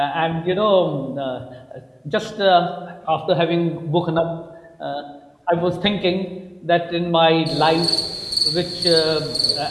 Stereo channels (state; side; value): identical; both; correlation 1.00